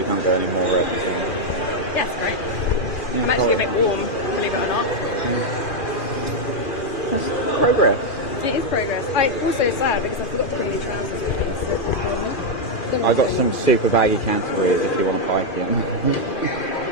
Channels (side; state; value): right; late; 2.4 ms